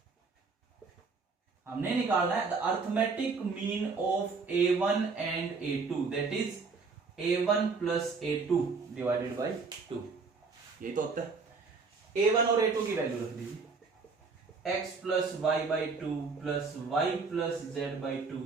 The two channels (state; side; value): quieter; left; 4.6 dB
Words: हमने निकालना है the arithmetic mean of a1 and a2, that is a1 plus a2 divided by 2। यही तो होता है। a1 और a2 की वैल्यू रख दीजिए, x plus y by 2 plus y plus z by 2